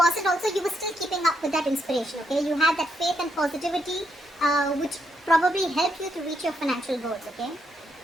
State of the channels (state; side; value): normal; both; correlation 0.78